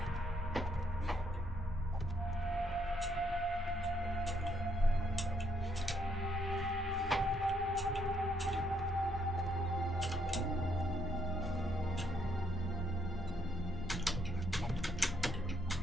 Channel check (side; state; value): both; normal; correlation 0.73